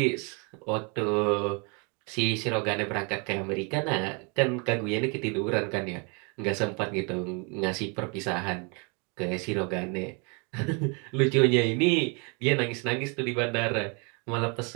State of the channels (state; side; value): quieter; left; 33.7 dB